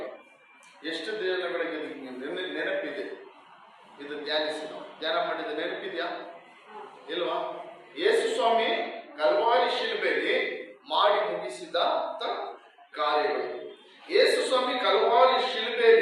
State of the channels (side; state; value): both; identical; correlation 1.00